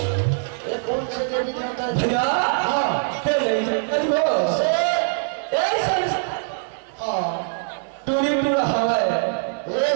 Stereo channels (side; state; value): left; silent; 62 dB below the other